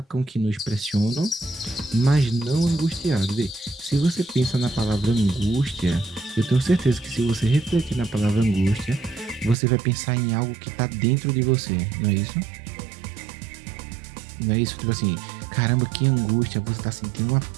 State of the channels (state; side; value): drops out; left; at 9.6 s